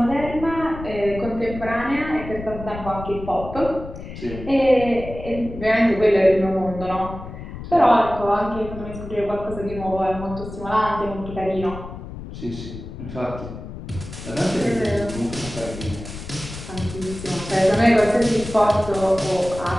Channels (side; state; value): left; noise; rumble, 11 dB below the sound